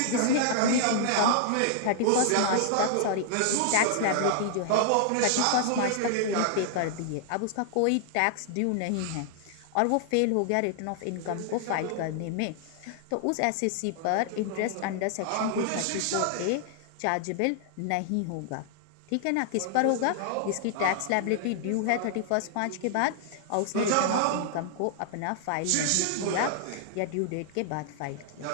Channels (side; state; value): both; different; correlation -0.01